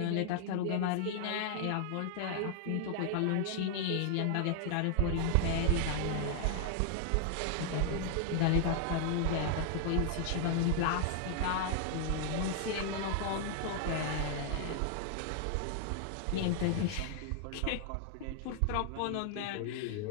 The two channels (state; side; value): different; both; correlation 0.00